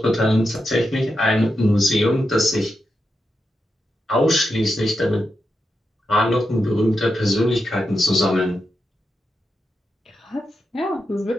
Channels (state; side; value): normal; both; correlation 0.87